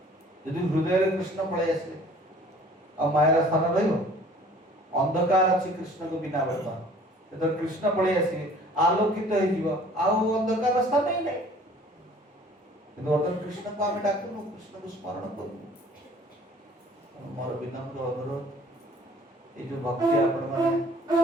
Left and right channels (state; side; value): normal; both; correlation 0.52